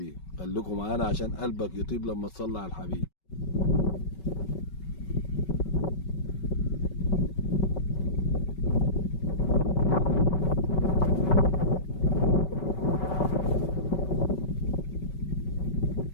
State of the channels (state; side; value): late; right; 5.3 ms